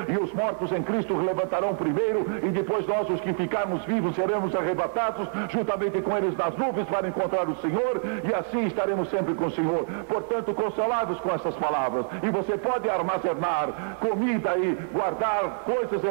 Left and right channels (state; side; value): silent; left; 61 dB below the other